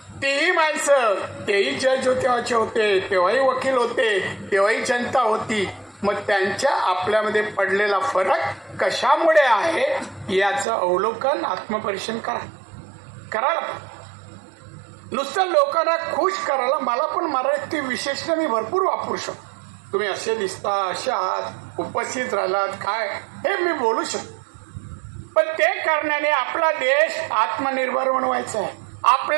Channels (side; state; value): left; drops out; at 10.7 s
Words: तेही माणसं, तेही जज होते, तेव्हाही वकील होते, तेव्हाही जनता होती. मग त्यांच्या आपल्यामध्ये पडलेला फरक कशामुळे आहे याचं अवलोकन, आत्मपरीक्षण करायला. नुसतं लोकांना खुश करायला मला पण मराठी विशेषण मी भरपूर वापरू शकतो. तुम्ही असे दिसता, असे आहात, उपस्थित राहिलात, काय हे मी बोलू शकतो. पण ते करण्याने आपला देश आत्मनिर्भर बनवायचा आहे,